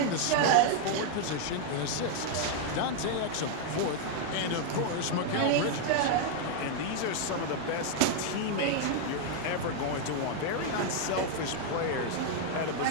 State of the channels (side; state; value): both; different; correlation 0.00